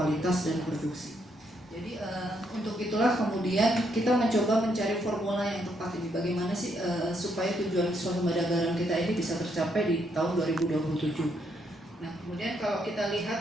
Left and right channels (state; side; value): normal; both; correlation 0.75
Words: dan produksi. Jadi untuk itulah kemudian kita mencoba mencari formula yang tepat ini. Bagaimana sih supaya tujuan swasembada garam kita ini bisa tercapai di tahun 2027. Nah, kemudian kalau kita